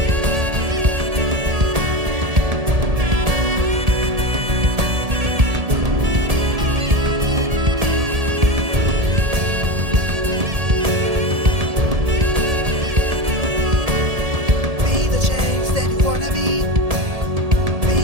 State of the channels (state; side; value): late; left; 1.7 ms